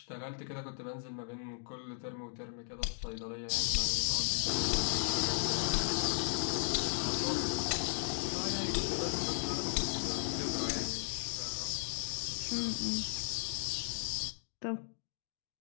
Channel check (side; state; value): right; silent; digital silence